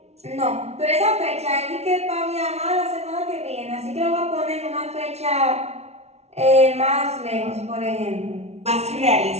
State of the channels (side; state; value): left; late; 0.31 ms